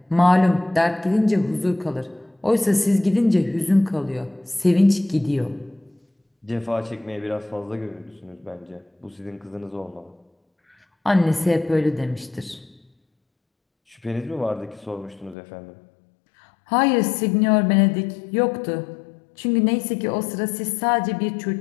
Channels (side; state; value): right; drops out; at 15.4 s